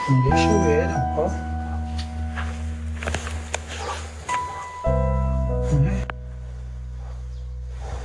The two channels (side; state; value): both; identical; correlation 1.00